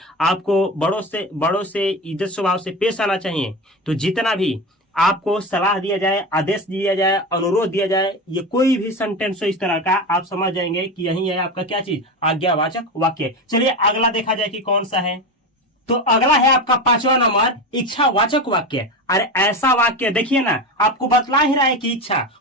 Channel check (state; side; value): normal; both; correlation 0.23